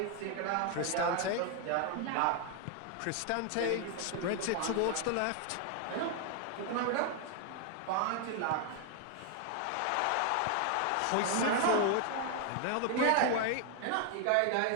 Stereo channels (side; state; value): both; different; correlation 0.00